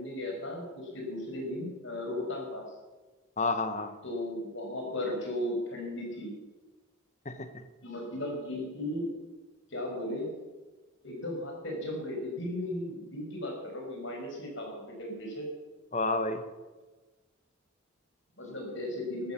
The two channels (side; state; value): both; normal; correlation 0.08